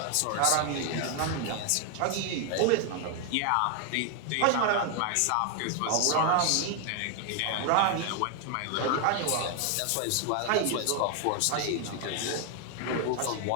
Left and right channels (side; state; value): both; different; correlation 0.00